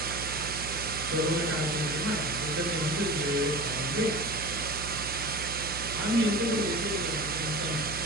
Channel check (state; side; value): noise; right; hum, 10 dB below the sound